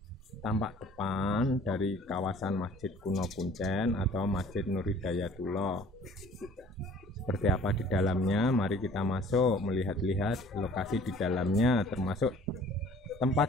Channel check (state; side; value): normal; both; correlation 0.51